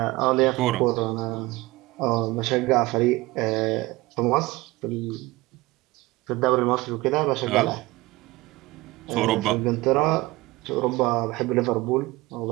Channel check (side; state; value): left; quieter; 20.7 dB